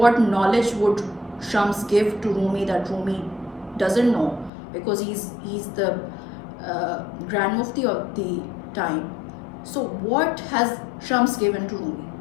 knowledge would Shams give to Rumi that Rumi doesn't know? Because he's the Grand Mufti of the time. So what has Shams given to Rumi?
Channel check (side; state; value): right; drops out; at 4.5 s